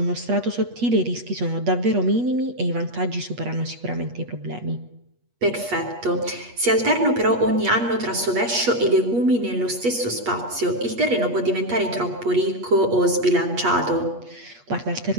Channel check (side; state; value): left; late; 8.4 ms